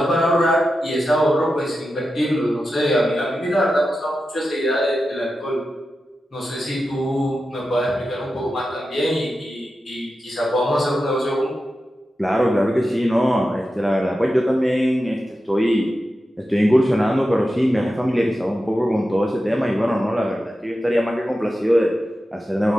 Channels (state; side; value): normal; both; correlation 0.91